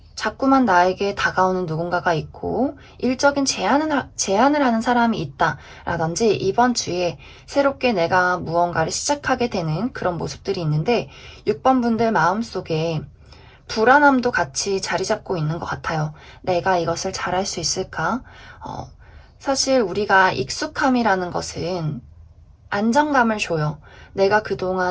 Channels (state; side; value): identical; both; correlation 1.00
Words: 자꾸만 나에게 다가오는 누군가가 있고 일적인 제안을 하는 사람이 있다라든지 이번 주에 새롭게 내가 무언가를 시작하게 되는 그런 모습들이 있는데 6번 분들 마음속에 불안함도 같이 자리 잡고 있는 것 같아요. 내가 이것을 잘할 수 있을까? 사실 우리가 익숙함이라는 것은 안정감을 줘요. 내가